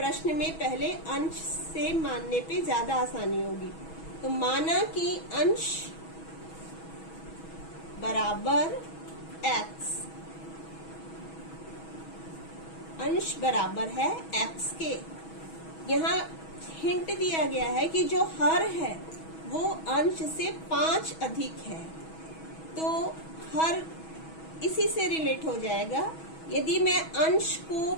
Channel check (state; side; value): late; right; 6.2 ms